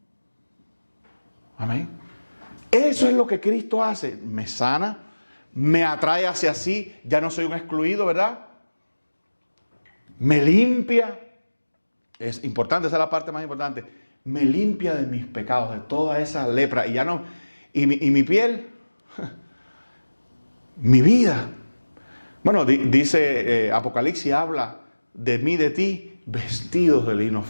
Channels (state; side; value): inverted; both; correlation -1.00